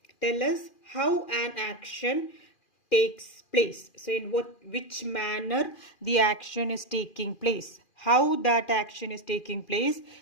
tell us how an action takes place. So in which manner the action is taking place. How that action is taking place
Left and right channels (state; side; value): late; right; 2.4 ms